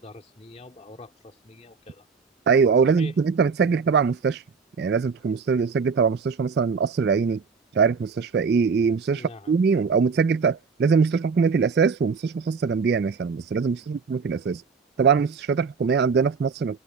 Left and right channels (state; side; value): quieter; left; 5.3 dB